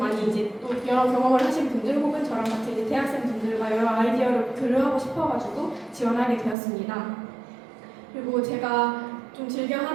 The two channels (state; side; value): drops out; left; at 6.6 s